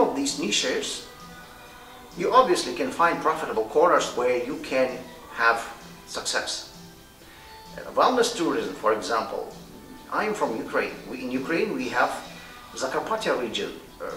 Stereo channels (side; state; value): both; identical; correlation 1.00